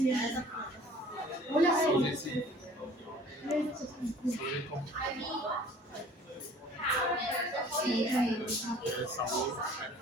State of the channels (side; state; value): both; normal; correlation 0.50